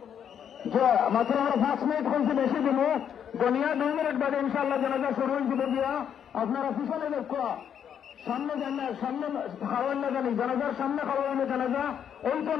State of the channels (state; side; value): quieter; right; 8.6 dB